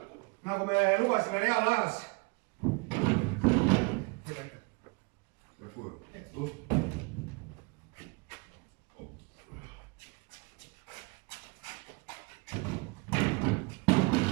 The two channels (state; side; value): quieter; left; 29.2 dB